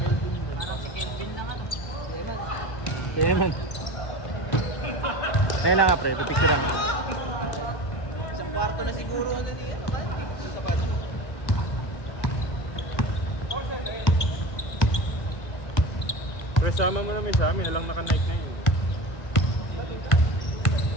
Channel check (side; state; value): right; late; 1.4 ms